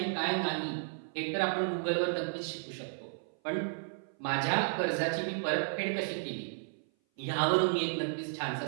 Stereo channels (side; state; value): left; silent; 56 dB below the other